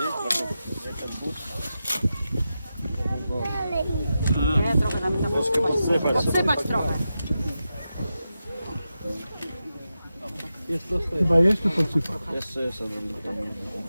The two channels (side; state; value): both; inverted; correlation -0.90